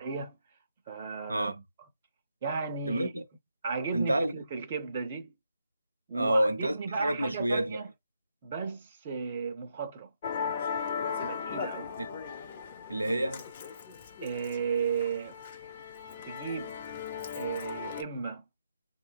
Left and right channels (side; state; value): both; inverted; correlation -0.79